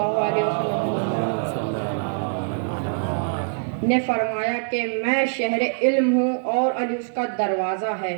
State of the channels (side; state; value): left; silent; digital silence